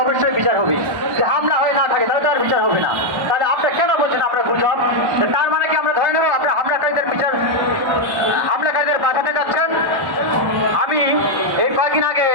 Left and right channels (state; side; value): late; left; 1.1 ms